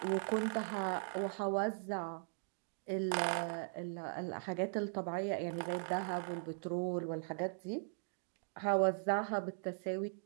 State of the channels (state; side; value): silent; left; digital silence